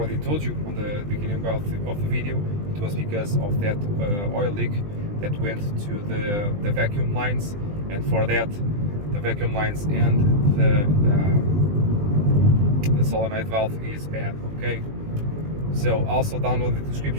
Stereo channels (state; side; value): late; left; 20 ms